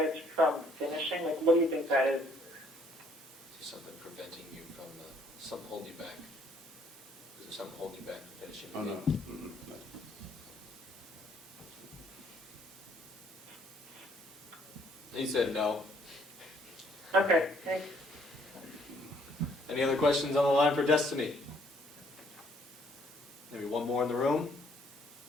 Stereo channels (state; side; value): normal; both; correlation 0.65